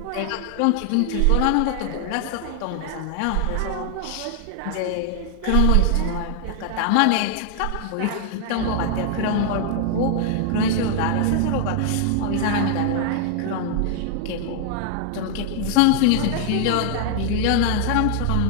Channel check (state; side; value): different; both; correlation 0.00